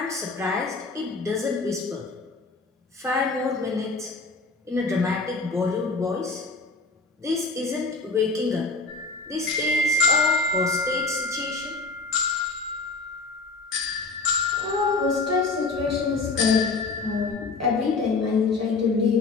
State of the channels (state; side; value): quieter; right; 3.8 dB